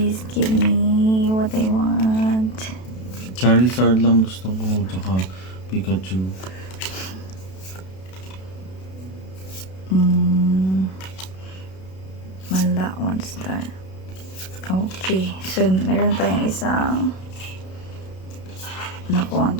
give me what I want. Charizard lang gusto ko, tsaka Pikachu. Wala, 1 star. Okay, so meron tayong isang nakuha ang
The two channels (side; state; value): right; late; 32 ms